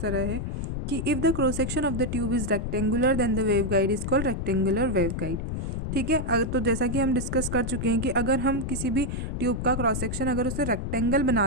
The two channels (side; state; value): left; noise; rumble, 3 dB below the sound